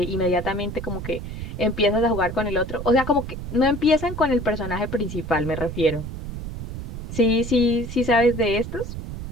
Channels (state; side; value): noise; right; rumble, 7 dB below the sound